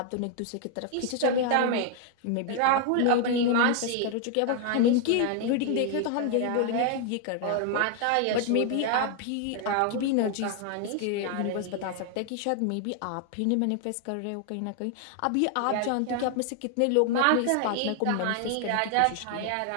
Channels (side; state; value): both; different; correlation 0.00